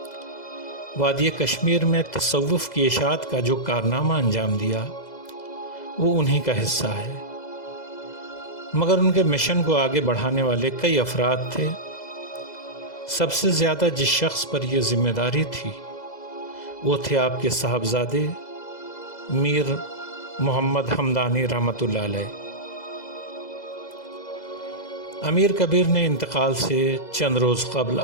وادی کشمیر میں تصوف کی اشاعت کا جو کارنامہ انجام دیا وہ انہی کا حصہ ہے، مگر ان کے مشن کو آگے بڑھانے والے کئی افراد تھے۔ سب سے زیادہ جس شخص پر یہ ذمہ داری تھی وہ تھے آپ کے صاحبزادے میر محمد ہمدانی رحمۃ اللہ علیہ۔ امیر کبیر نے انتقال سے چند روز قبل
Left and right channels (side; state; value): right; late; 2.0 ms